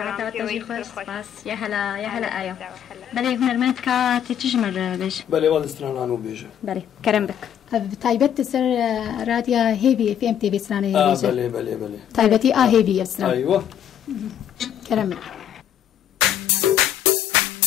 و تجی خوش سپاس يا هلا آیا بله هنرمند که تجمر بيش بله والد استرانانو بيجه بله كرم بك تايبت سر راديا هيفي في ام تي في سرانا هيفي بله تايبتي هيفي سرانا ايوه كرم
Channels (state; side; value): quieter; right; 9.8 dB